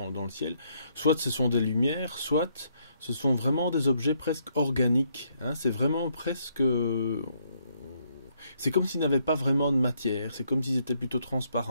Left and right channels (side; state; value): both; inverted; correlation -0.72